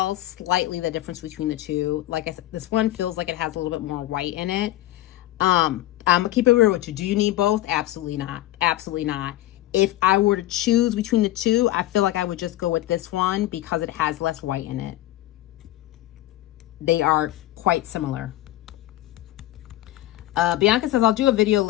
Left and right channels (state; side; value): quieter; right; 15.3 dB